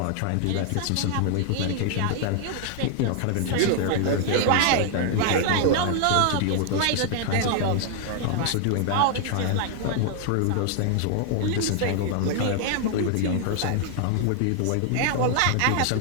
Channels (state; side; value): different; both; correlation 0.00